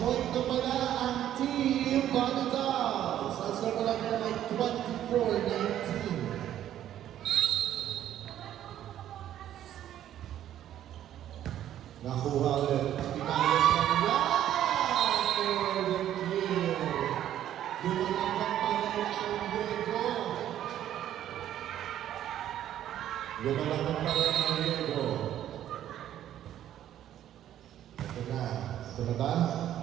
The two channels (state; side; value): quieter; left; 11.5 dB